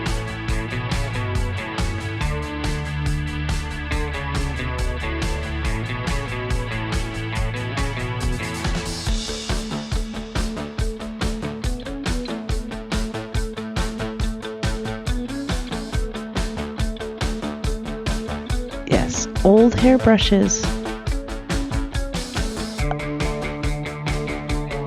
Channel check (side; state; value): both; identical; correlation 1.00